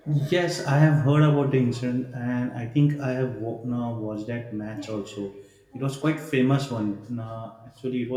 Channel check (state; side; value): identical; both; correlation 1.00